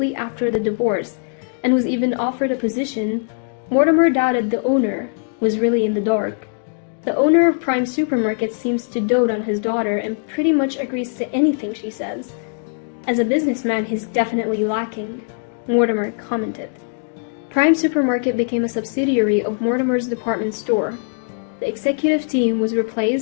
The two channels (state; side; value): silent; right; 65 dB below the other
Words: after the divorce and was even offered a position, Mortimer doubted the owner was really in the dark. The owner of Prime Supermarket seems to dote on his daughter and pretty much agrees to anything she says. As a businessman, he's definitely lacking, Mortimer commented. Prime Supermarket became a subsidiary of Mortimer's department store. The executive team was